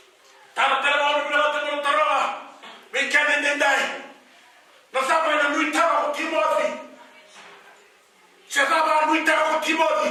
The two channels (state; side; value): identical; both; correlation 1.00